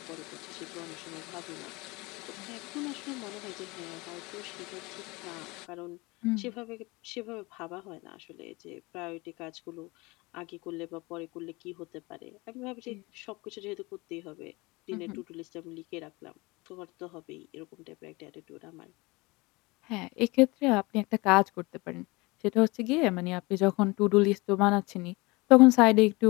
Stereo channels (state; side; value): quieter; right; 24.3 dB